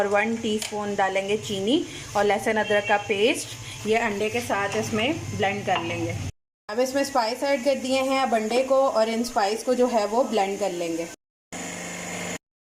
1 टीस्पून डालेंगे चीनी और लहसुन अदरक का पेस्ट। ये अंडे के साथ इसमें ब्लेंड कर लेंगे। अब इसमें स्पाइस ऐड कर दिए हैं। अब अंडे को और इन स्पाइस को जो है वो ब्लेंड कर लेंगे।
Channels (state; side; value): identical; both; correlation 1.00